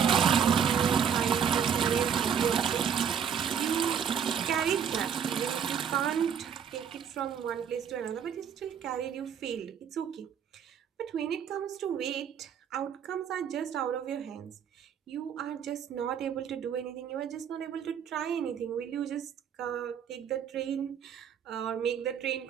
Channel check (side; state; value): left; quieter; 7.7 dB